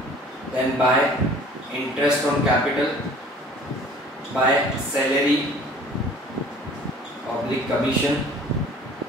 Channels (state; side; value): normal; both; correlation 0.49